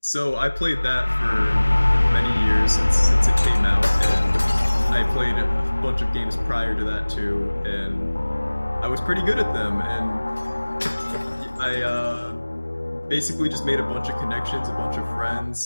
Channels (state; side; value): inverted; both; correlation -1.00